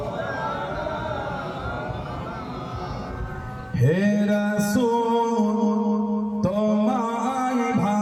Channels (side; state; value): both; identical; correlation 1.00